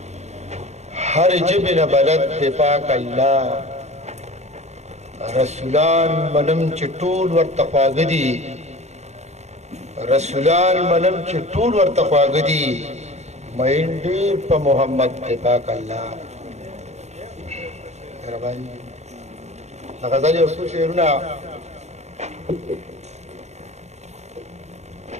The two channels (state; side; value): late; left; 0.32 ms